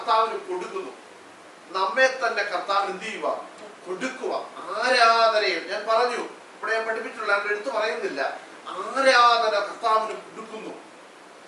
കൊടുക്കുന്നു. നമ്മെ തന്നെ കർത്താവിന് എന്ത് ചെയ്യുക? കൊടുക്കുക. ആരാധനയിൽ ഞാൻ പറഞ്ഞു, ഇവിടെ ഞാൻ പഠിപ്പിച്ചിട്ടുള്ള എടുത്തു പറയുന്നില്ല, ആരാധന കർത്താവിന് കൊടുക്കുന്നു.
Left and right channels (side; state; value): both; identical; correlation 1.00